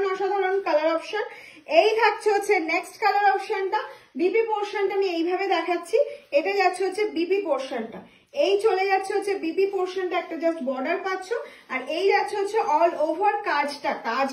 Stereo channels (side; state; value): both; identical; correlation 1.00